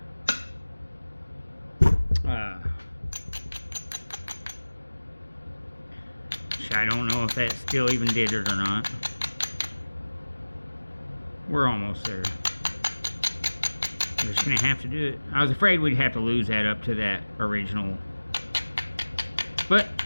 Which I don't know if that still even did it or not. We're almost there. We're just gonna have to do it. I was afraid we'd have to lose that up to that original. But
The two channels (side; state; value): both; inverted; correlation -1.00